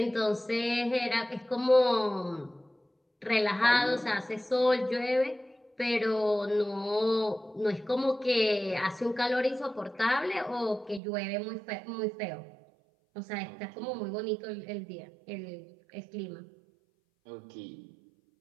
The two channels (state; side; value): drops out; left; at 11.0 s